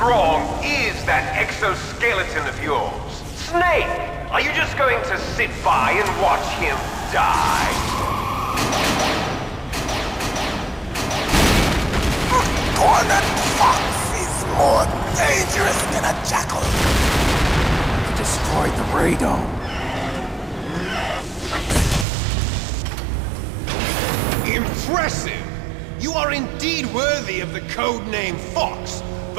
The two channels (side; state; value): left; drops out; at 22.1 s